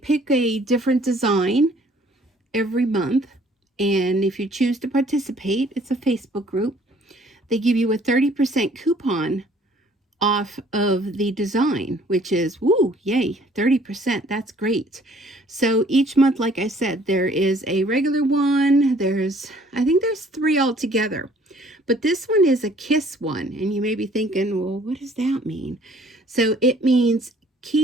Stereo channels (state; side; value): normal; both; correlation 0.58